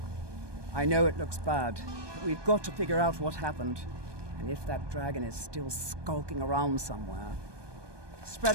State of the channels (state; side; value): late; left; 1.2 ms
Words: I know it looks bad, but we've got to figure out what happened, and if that dragon is still skulking around somewhere. Spread